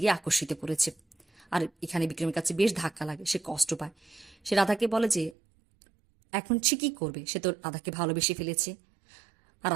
আকর্ষিত করেছে। আর এখানে বিক্রমের কাছে বেশ ধাক্কা লাগে, সে কষ্ট পায়। সে রাধাকে বলে যে এখন সে কি করবে, সে তো রাধাকে ভালোবেসে ফেলেছে। আর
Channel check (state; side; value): drops out; left; at 5.4 s